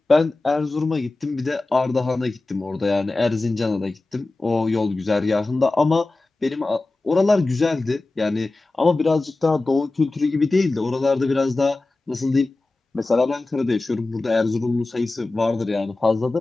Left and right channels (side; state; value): right; quieter; 3.2 dB